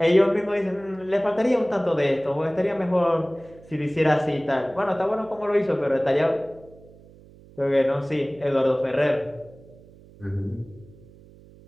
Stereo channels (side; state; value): right; noise; hum, 23 dB below the sound